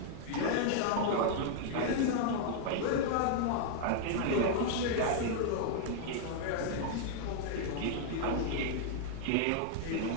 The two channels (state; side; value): different; both; correlation 0.00